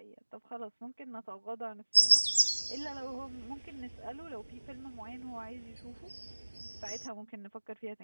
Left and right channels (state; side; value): inverted; both; correlation -1.00